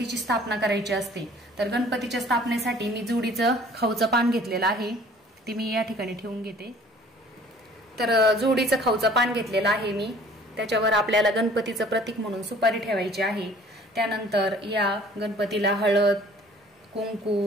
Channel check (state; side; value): normal; both; correlation 0.53